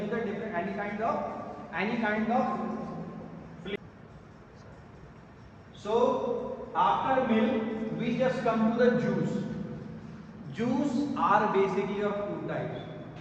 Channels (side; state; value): both; identical; correlation 1.00